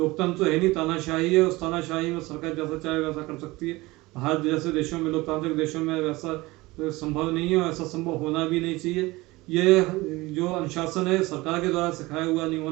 तो है नहीं, तानाशाही है। उस तानाशाही में सरकार जैसा चाहे वैसा कर सकती है। भारत जैसे देशों में, लोकतांत्रिक देशों में वैसा संभव नहीं है, और ऐसा संभव होना भी नहीं चाहिए। ये जो अनुशासन है सरकार के द्वारा सिखाया हुआ नहीं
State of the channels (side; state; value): left; quieter; 21.1 dB